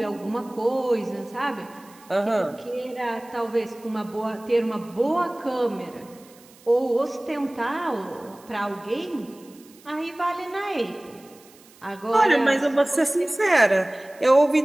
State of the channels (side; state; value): right; noise; hiss, 26 dB below the sound